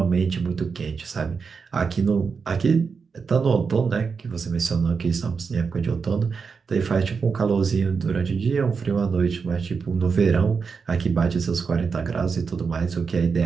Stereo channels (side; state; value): left; quieter; 5.4 dB